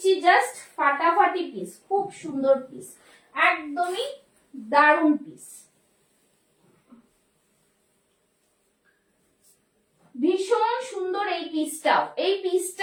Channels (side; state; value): both; identical; correlation 1.00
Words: জাস্ট ফাটাফাটি পিস, খুব সুন্দর পিস, একদমই দারুণ পিস, ভীষণ সুন্দর এই পিসটাও। এই